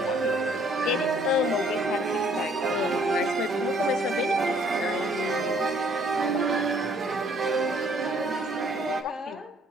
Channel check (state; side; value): normal; both; correlation 0.61